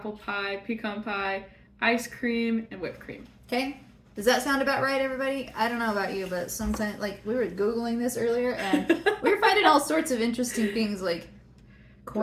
pie, pecan pie, ice cream, and whipped cream. Okay, does that sound about right, everybody? I don't know about you, but sometimes, like, we were Googling this earlier, and we were finding all sorts of interesting things, like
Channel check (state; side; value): identical; both; correlation 1.00